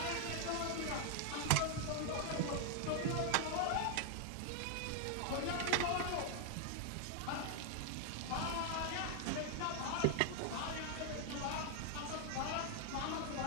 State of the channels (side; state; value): both; different; correlation 0.00